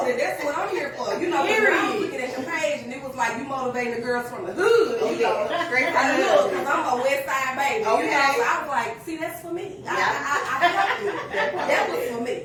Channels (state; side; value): identical; both; correlation 1.00